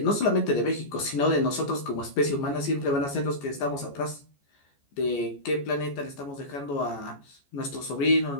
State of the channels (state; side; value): late; right; 14 ms